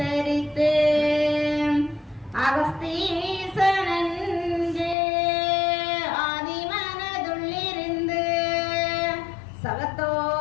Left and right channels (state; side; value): drops out; right; at 5.0 s